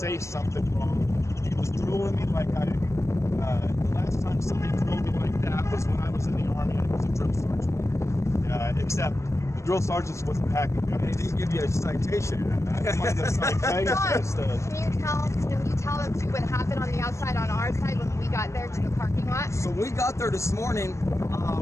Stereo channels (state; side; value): late; right; 0.14 ms